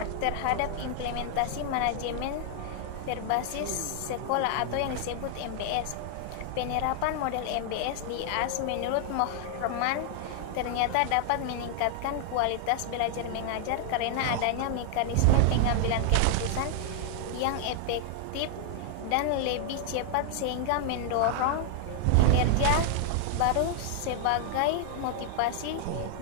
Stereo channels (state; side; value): different; both; correlation 0.00